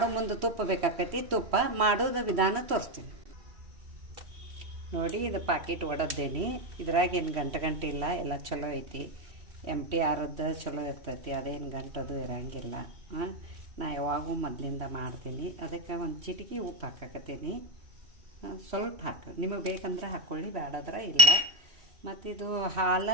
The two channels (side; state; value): left; late; 3.0 ms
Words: ಮುಂದೆ ತುಪ್ಪ ಬೇಕಾಕೈತಿ. ತುಪ್ಪ ಮಾಡೋದು ವಿಧಾನ ತೋರಿಸ್ತೀನಿ ನೋಡಿ. ಇದು ಪ್ಯಾಕೆಟ್ ಒಡದ್ದೇನಿ. ಇದ್ರಾಗ ಏನು ಗಂಟೆ ಇಲ್ಲ, ಎಲ್ಲ ಚಲೋ ಐತಿ. MTRದ್ದು ಚಲೋ ಇರ್ತೈತಿ, ಅದೇನು ಗಂಟದು ಇರಂಗಿಲ್ಲ. ನಾ ಯಾವಾಗೂ ಮೊದಲಿಂದ ಮಾಡ್ತೀನಿ. ಅದಕ್ಕೆ ಒಂದು ಚಿಟಿಕೆ ಉಪ್ಪು ಹಾಕಕತ್ತೀನಿ. ಸ್ವಲ್ಪ ಹಾಕಿ, ನಿಮಗೆ ಬೇಕಂದ್ರೆ ಹಾಕ್ಕೊಳ್ಳಿ, ಬೇಡಾದ್ರೆ ಇಲ್ಲ. ಮತ್ತು ಇದು